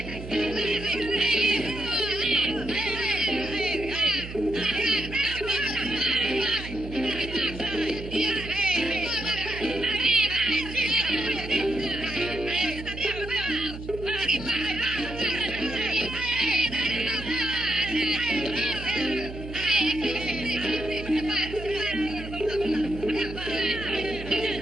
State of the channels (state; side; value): noise; right; hum, 11 dB below the sound